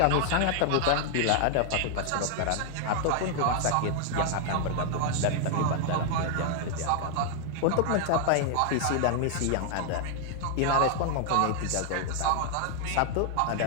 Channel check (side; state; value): both; different; correlation 0.00